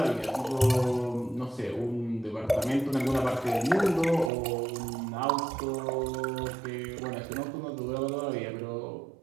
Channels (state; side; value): drops out; left; at 4.3 s